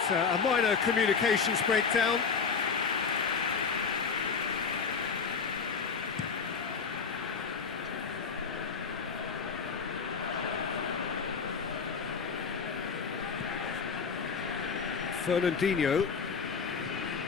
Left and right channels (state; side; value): quieter; right; 5.6 dB